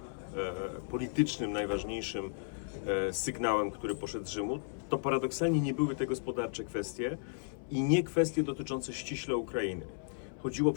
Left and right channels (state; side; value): silent; right; 55 dB below the other